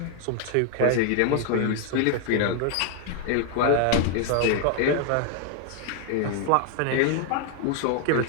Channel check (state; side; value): different; both; correlation 0.00